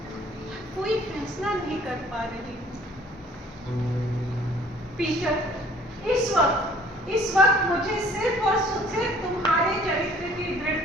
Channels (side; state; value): both; normal; correlation 0.55